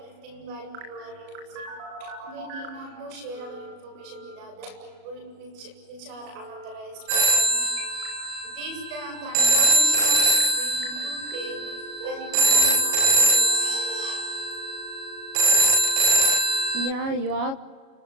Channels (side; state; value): left; late; 37 ms